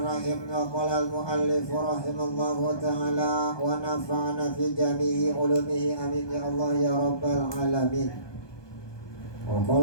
Wa qala al-muallif rahimallahu ta'ala wa nafa'ana fi jami'i ulumihi, amin ya Allah ya rabbal alamin. Wa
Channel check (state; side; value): late; right; 1.2 ms